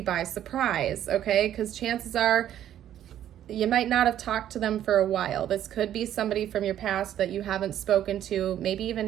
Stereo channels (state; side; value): quieter; left; 11.2 dB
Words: by surprise, okay? Because chances are you might not have talked to them for a while. This could be somebody from your past that you haven't spoken to, maybe even